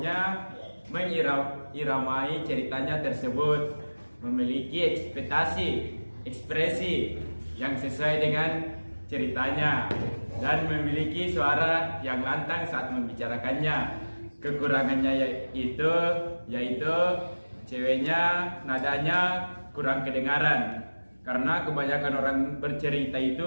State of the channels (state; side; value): inverted; both; correlation -1.00